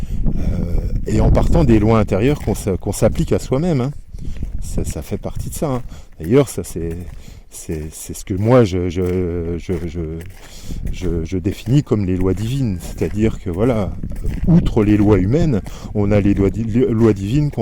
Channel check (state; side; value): identical; both; correlation 1.00